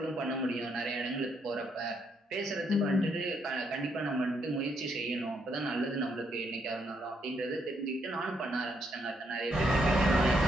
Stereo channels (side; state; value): both; normal; correlation 0.75